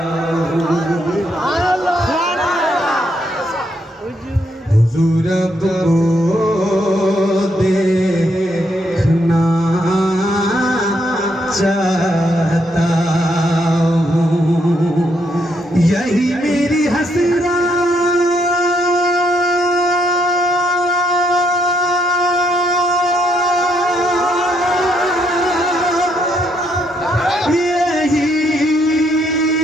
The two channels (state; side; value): normal; both; correlation 0.75